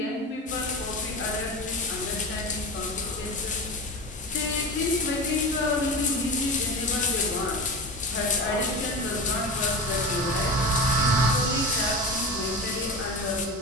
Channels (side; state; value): both; normal; correlation 0.27